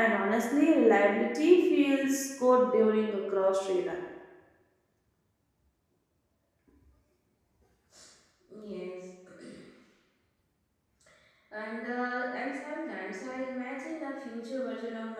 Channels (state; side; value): identical; both; correlation 1.00